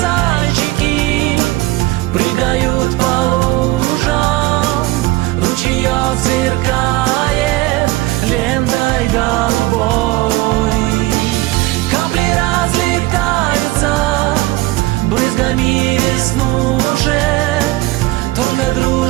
прыгают по лужам, ручеёк сверкает лентой голубой. Капли разлетаются брызгами веснушек, только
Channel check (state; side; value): quieter; left; 19.0 dB